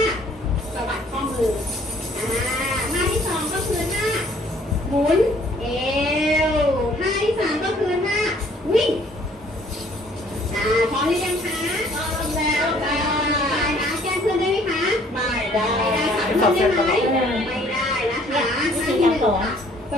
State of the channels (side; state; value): both; normal; correlation 0.59